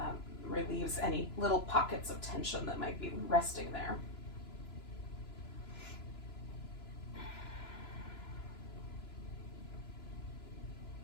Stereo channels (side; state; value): right; late; 2.9 ms